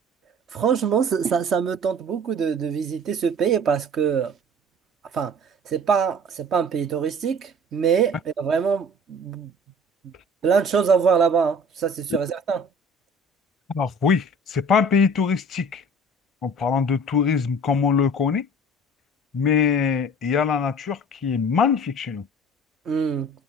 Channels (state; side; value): normal; both; correlation 0.46